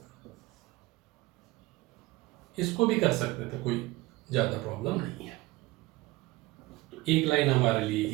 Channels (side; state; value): left; quieter; 20.4 dB